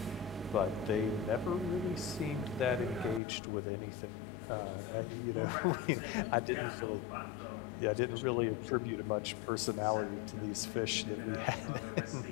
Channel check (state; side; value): drops out; right; at 3.2 s